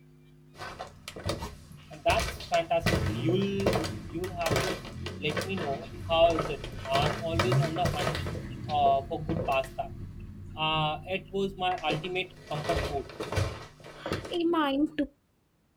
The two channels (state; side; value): identical; both; correlation 1.00